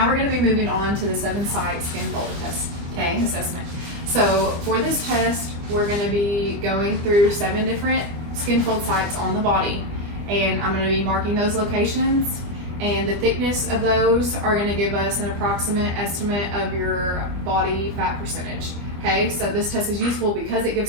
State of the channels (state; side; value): late; left; 25 ms